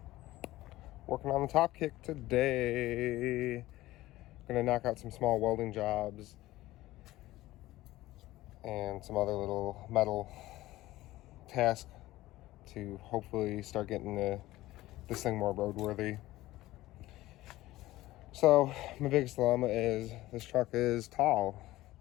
Working on the top kick today. Gonna knock out some small welding jobs and some other little metal tasks to hopefully start getting this thing more roadworthy. So my biggest dilemma is this truck is tall.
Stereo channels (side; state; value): right; quieter; 16.9 dB